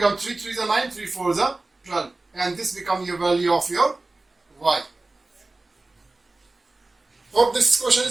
3 3s are 9, 3 4s are 12. And this becomes your value of your y. Hope this question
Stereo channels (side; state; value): left; quieter; 3.1 dB